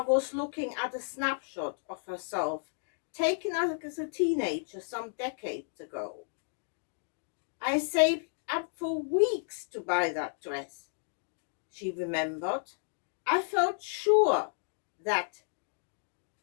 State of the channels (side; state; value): right; silent; digital silence